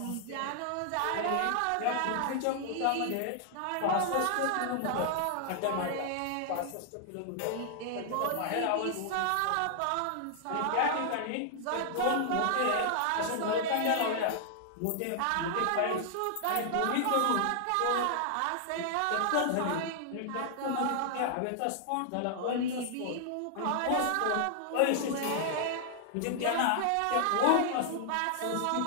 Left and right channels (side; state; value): both; different; correlation -0.01